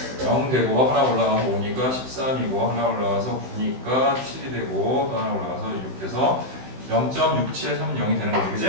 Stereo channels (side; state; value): left; late; 16 ms